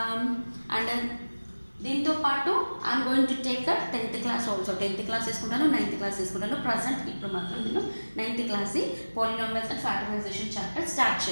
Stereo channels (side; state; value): both; inverted; correlation -1.00